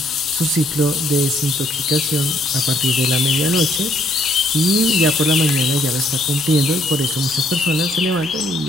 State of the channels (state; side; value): normal; both; correlation 0.68